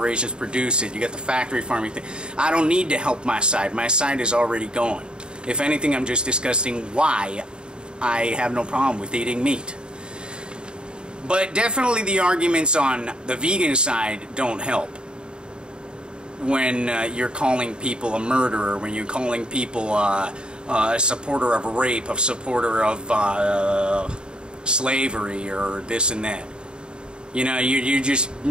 produce it, you got the factory farming thing. I don't need to help my side. My side is already going. If anything, I'm just discussing why I have no problem with eating meat. But definitely the arguments on the vegan side don't help. When you're calling people a murderer, when you're calling people a supporter of rape, a supporter of slavery, or this and that. You know, you're just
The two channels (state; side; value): late; left; 0.050 ms